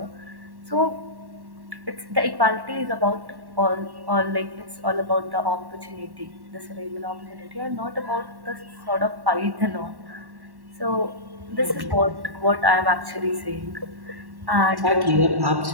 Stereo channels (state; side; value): late; left; 1.1 ms